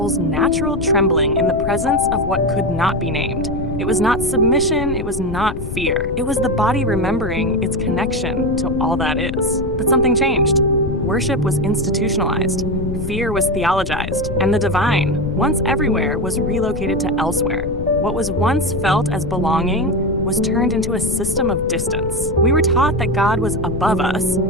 natural trembling in the presence of what could not be named. It was not submission, it was not fear. It was the body remembering its connection to all that is. But something changed. Worship was institutionalized, fear was theologized, and the divine, once everywhere, was relocated to elsewhere. What was once felt as belonging was turned into a system of distance. We were taught that God was above us,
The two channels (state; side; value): noise; left; rumble, 7 dB below the sound